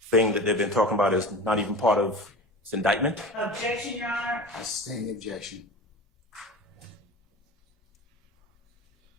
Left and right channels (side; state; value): both; normal; correlation 0.32